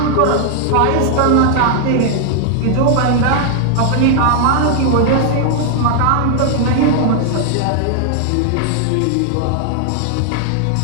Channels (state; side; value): different; both; correlation 0.00